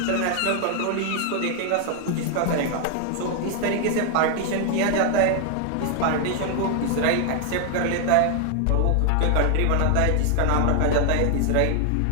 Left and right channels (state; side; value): different; both; correlation 0.00